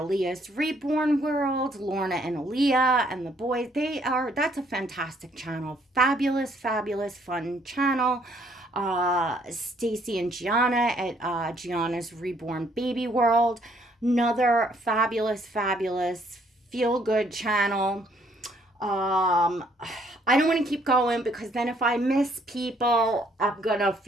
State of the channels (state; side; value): normal; both; correlation 0.66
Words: Reborn World, Lorna and Aliyah and the boys, that's a fantastic channel. Fabulous fun channel. Stacy and Giana at Giana's Reborn Baby World, another fabulous feel-good channel. I don't want to keep going because then if I miss people, I'm gonna